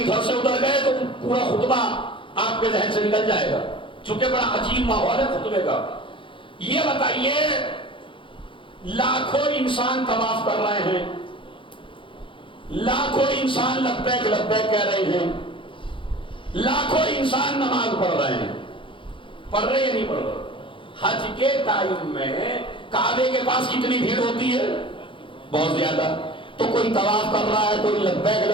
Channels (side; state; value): right; late; 0.25 ms